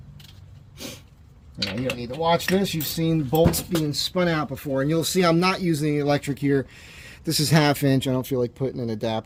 Now, you don't need to watch this. You've seen bolts being spun out before, and you'll see I'm not using the electric here. This is 1/2 inch. I don't feel like putting an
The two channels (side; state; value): both; identical; correlation 1.00